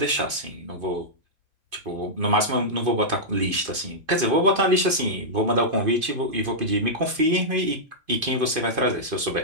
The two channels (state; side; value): late; left; 2.5 ms